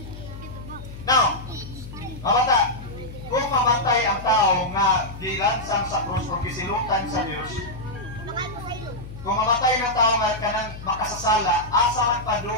Now, mamata, kung mamatay ang tao nga dilansang sa krus o kisilutan sa Diyos, kung mamatay ng tao nga kanang makasasala, asa man pa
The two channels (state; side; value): noise; left; hum, 13 dB below the sound